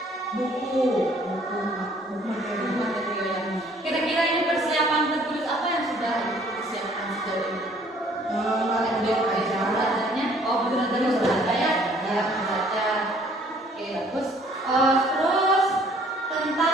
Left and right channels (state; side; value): normal; both; correlation 0.58